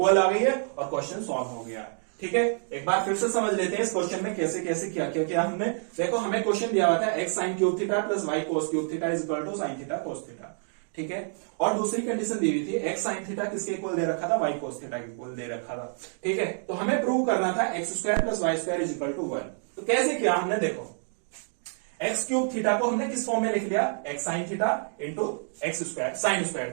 आ गई है और क्वेश्चन सॉल्व हो गया। ठीक है, एक बार फिर से समझ लेते हैं इस क्वेश्चन में कैसे कैसे क्या क्या किया हमने। देखो हमें क्वेश्चन दिया हुआ था x sine cube theta plus y cos cube theta is equal to sine theta cos theta. ठीक है, और दूसरी कंडीशन दी हुई थी एक्स साइन थीटा किसके इक्वल दे रखा था, वाई कोस थीटा के इक्वल दे रखा था। ठीक है, तो हमें प्रूव करना था x square plus Y square is equal to 1। तो कैसे किया हमने, देखो एक्स क्यूब थीटा को हमने किस फॉर्म में लिख लिया, x sine theta into x square sine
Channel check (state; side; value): silent; left; 58 dB below the other